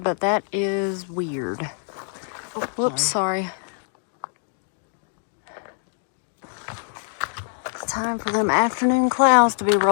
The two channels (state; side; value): silent; right; 56 dB below the other